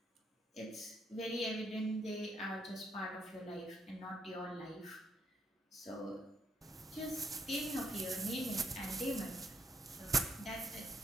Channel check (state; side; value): normal; both; correlation 0.72